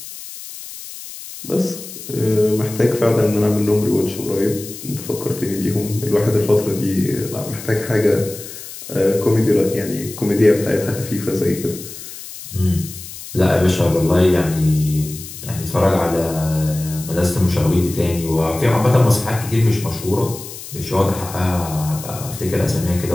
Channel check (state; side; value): noise; left; hiss, 13 dB below the sound